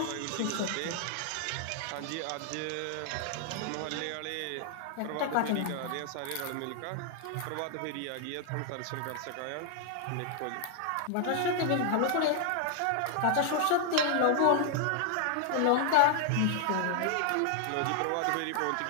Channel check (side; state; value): both; different; correlation 0.00